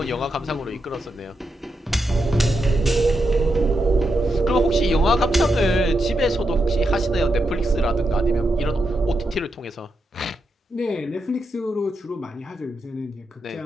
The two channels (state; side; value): normal; both; correlation 0.84